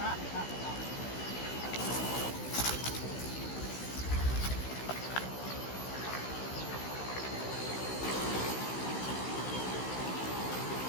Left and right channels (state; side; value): late; right; 16 ms